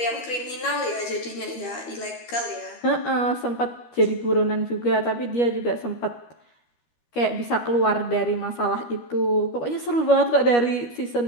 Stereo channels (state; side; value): late; right; 13 ms